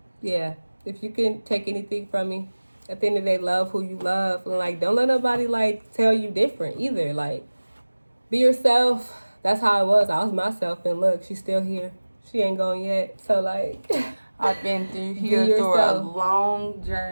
yeah, if you can take anything from me, at the end of the day, love who you love. And like, don't let nobody like tell you different either. Like, be yourself. That's how I was. I was myself, and look, she's still here. She ain't gone yet. So like, I've been through a long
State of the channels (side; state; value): both; inverted; correlation -1.00